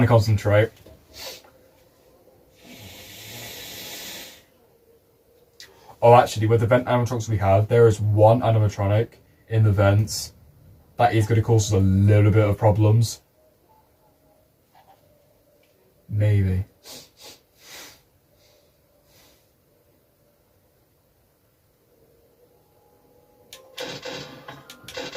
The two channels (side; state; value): both; identical; correlation 1.00